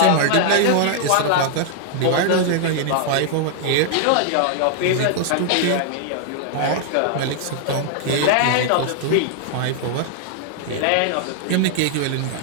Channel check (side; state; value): both; different; correlation 0.00